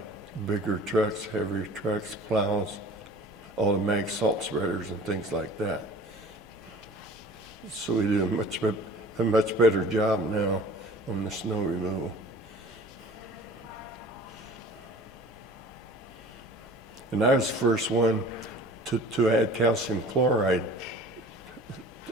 bigger trucks, heavier trucks, plows, automatic salt spreaders, and things like that. So we do a much better job now on the snow removal. And I was the first one to add calcium chloride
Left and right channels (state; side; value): normal; both; correlation 0.45